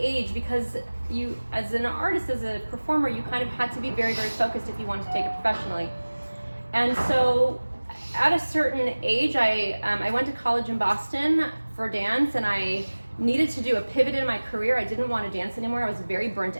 age, because you, as an artist, as a performer, you kind of had to be very, very focused if you wanted to take it professionally. And so at a certain age, I went to college in Boston for dance, and I needed to do a pivot in my career. I didn't want to dance anymore. I was very burnt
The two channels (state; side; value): inverted; both; correlation -1.00